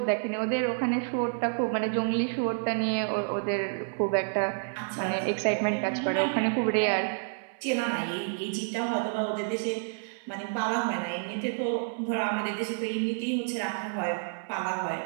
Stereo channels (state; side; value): silent; left; 58 dB below the other